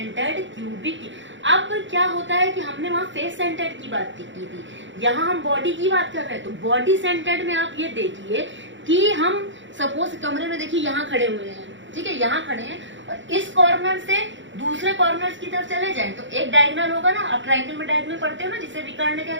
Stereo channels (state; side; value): late; left; 0.54 ms